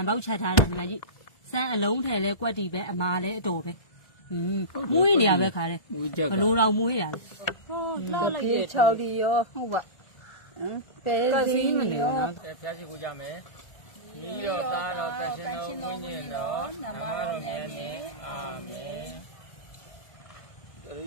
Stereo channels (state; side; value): late; right; 1.2 ms